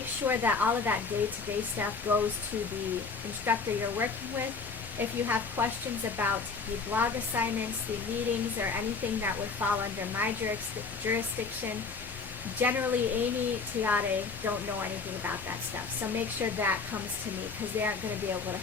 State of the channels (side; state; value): right; quieter; 4.8 dB